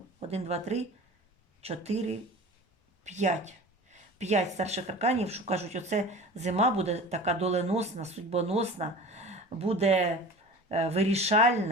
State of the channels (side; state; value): both; normal; correlation 0.38